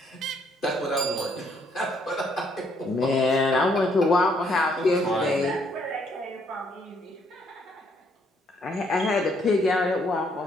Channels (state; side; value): normal; both; correlation 0.69